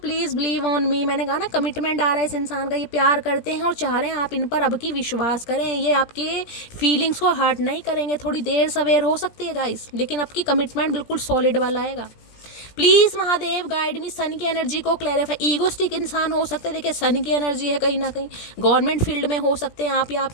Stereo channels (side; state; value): right; late; 17 ms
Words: believe on me. मैंने कहा ना कमिटमेंट आ रहा है इस इंसान का, ये प्यार करते हैं और चाह रहे हैं आप इन पर अब की विश्वास करें। ये आपके फीलिंग्स को हर्ट नहीं करेंगे, थोड़ी देर सवेर हो सकती है गाइस, लेकिन अब की कमिटमेंट बिल्कुल सॉलिड वाला आएगा। Please Mahadev guide me, sun की एनर्जी को क्लैरिफाई। ईगोस्टिक इंसान हो सकते हैं, देखिए सन की एनर्जी है, कहीं ना कहीं गवर्नमेंट फील्ड में हो सकते हैं आप या